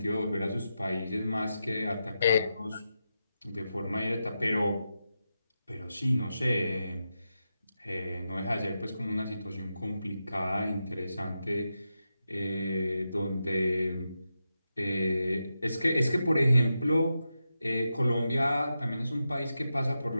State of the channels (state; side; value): inverted; both; correlation -0.88